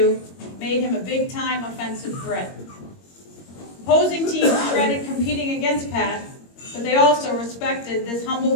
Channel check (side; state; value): right; late; 21 ms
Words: made him a big-time offensive threat. Opposing teams dreaded competing against Pat, but they also respected this